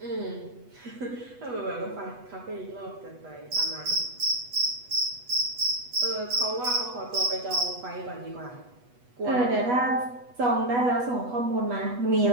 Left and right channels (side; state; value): left; late; 8.1 ms